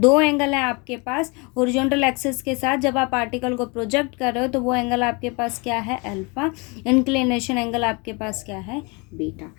एंगल हैं आपके पास हॉरिजॉन्टल एक्सिस के साथ। जब आप पार्टिकल को प्रोजेक्ट कर रहे हो तो वो एंगल आपके पास क्या है, अल्फा। इंक्लिनेशन एंगल आपके पास क्या है, beta.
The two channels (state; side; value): quieter; right; 29.7 dB